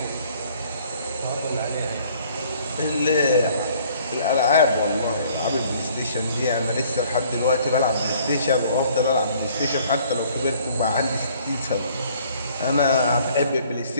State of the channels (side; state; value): both; inverted; correlation -0.58